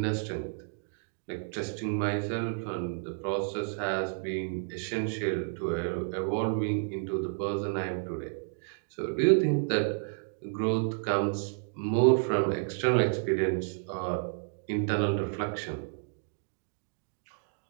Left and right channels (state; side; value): silent; left; digital silence